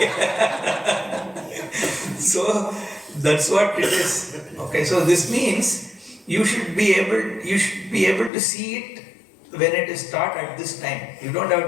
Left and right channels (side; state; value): right; drops out; at 8.3 s